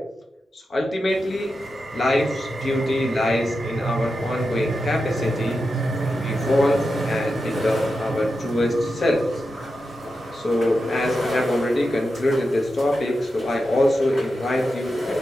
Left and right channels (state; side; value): normal; both; correlation 0.89